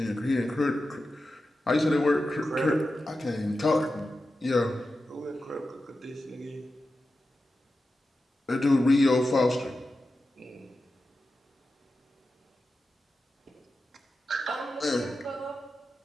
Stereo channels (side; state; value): both; normal; correlation 0.92